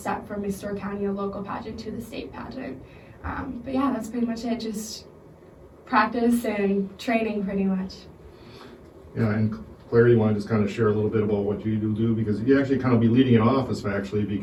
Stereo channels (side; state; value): both; identical; correlation 1.00